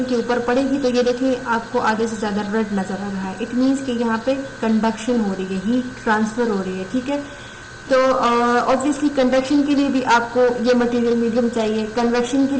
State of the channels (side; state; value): both; identical; correlation 1.00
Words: के ऊपर पड़ेगी तो ये देखिए आपको आगे से ज़्यादा रेड नज़र आ रहा है। इट मीन्स कि यहाँ पे कंडक्शन हो रही है, हीट ट्रांसफर हो रही है, ठीक है। तो ऑब्वियसली कंडक्शन के लिए भी आपको ये मटेरियल मीडियम चाहिए, कन्वेक्शन के